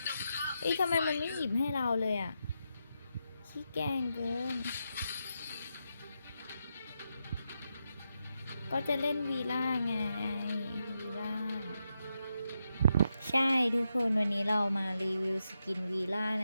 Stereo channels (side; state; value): both; inverted; correlation -0.85